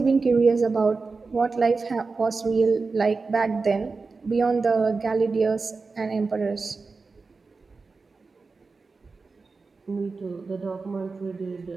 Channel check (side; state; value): left; quieter; 4.2 dB